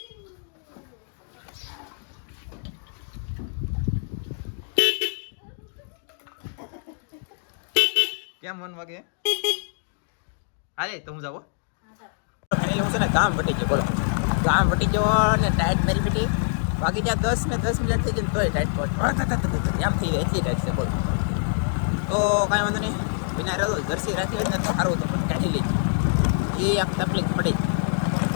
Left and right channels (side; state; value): right; silent; digital silence